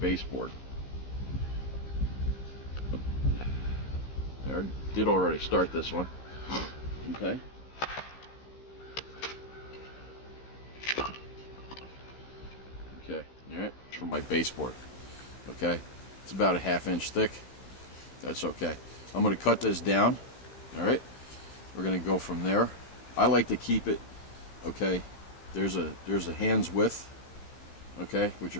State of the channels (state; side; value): late; right; 15 ms